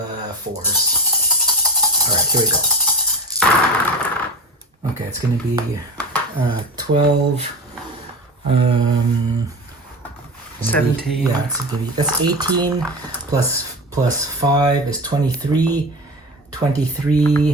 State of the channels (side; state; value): both; normal; correlation 0.28